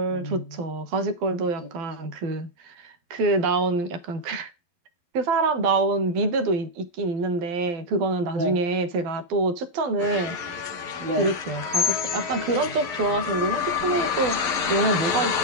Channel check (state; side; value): late; left; 12 ms